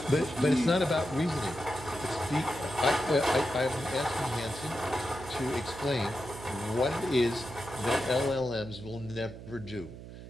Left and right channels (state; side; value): noise; right; hum, 13 dB below the sound